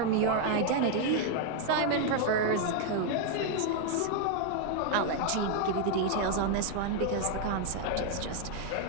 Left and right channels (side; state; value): both; different; correlation 0.00